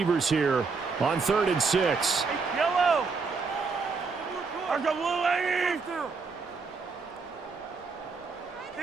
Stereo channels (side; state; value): left; quieter; 4.7 dB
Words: here on 3rd and 6. Yellow. There's a blue lady.